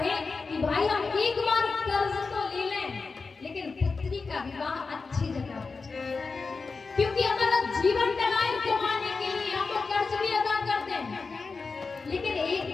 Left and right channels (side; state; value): right; quieter; 4.4 dB